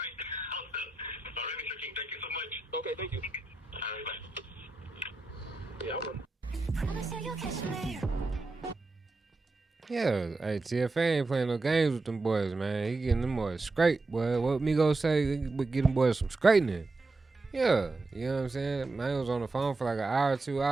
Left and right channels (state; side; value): quieter; left; 3.3 dB